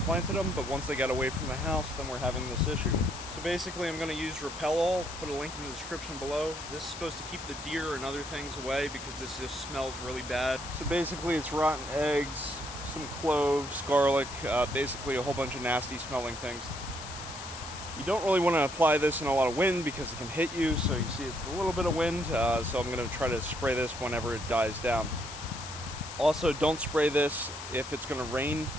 them, but once they got away from the house, then we're having this issue. So basically I'm going to use Repell-All, put a link in the description below. This is supposed to keep the deer and other things away because this just smells really bad. So basically it's rotten eggs, some cloves, garlic, basically a whole bunch of nasty smelling things. You don't really want to apply this in a lot of wind because it can hit you, so you see it's a little bit of wind, so I'm going to try to spray this whenever it dies down. Also, don't spray this if it's going to rain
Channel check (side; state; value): left; noise; hiss, 11 dB below the sound